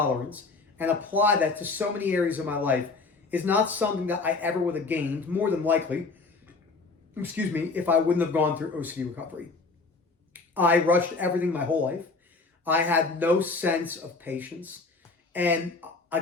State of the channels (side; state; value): right; quieter; 3.9 dB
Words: and apply that to so many areas of my life is not something that I ever would have gained, more than likely, if I wouldn't have gone through OCD recovery. I rushed everything my whole life. I had no sense of patience. And